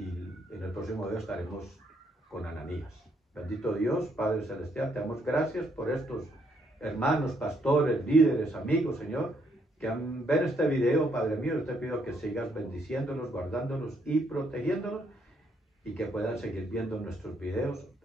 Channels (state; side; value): normal; both; correlation 0.72